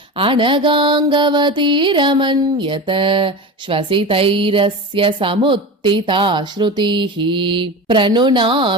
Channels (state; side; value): normal; both; correlation 0.26